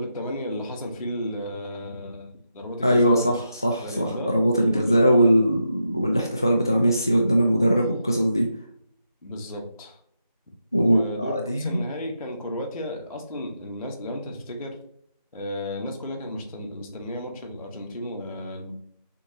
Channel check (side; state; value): both; inverted; correlation -0.83